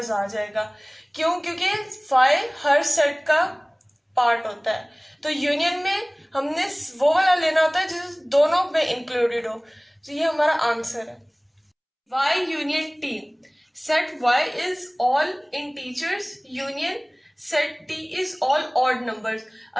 आ जाएगा। क्यों? क्योंकि 5 हर सेट का पार्ट होता है। तो यूनियन में हमने वो वाला लेना होता है जो दोनों में इंक्लूडेड हो। तो ये हमारा आंसर है। y union t। Set y is all integers, union set t is all odd numbers.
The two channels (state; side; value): identical; both; correlation 1.00